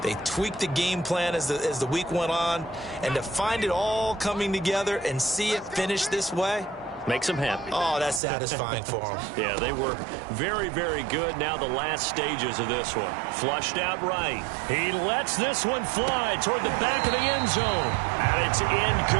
They tweaked the game plan as the week went on. And to find it all coming together and see it finish this way, makes them happy. Oh, that's satisfying for them. Yeah, they were very, very good. Now the last stages of this one. Flushed out right. He lets this one fly toward the back of the end zone. And it's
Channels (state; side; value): drops out; left; at 8.2 s